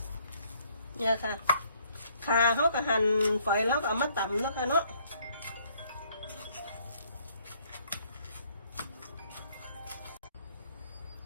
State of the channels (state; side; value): inverted; both; correlation -0.65